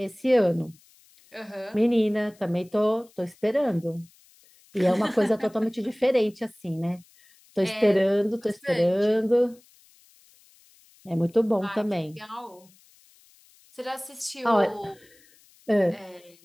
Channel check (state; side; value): noise; left; hiss, 29 dB below the sound